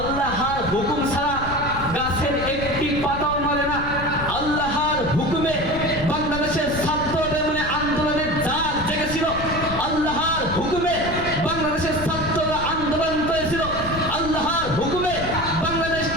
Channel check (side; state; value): left; noise; rumble, 9 dB below the sound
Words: হুকুম ছাড়া গাছের একটি পাতাও নড়ে না। আল্লাহর হুকুমে বাংলাদেশের ছাত্রদের মনে আন্দোলনের জাগ জেগেছিল। আল্লাহর হুকুমে বাংলাদেশের ছাত্ররা আন্দোলন করেছিল। আল্লাহর হুকুমে বাংলাদেশ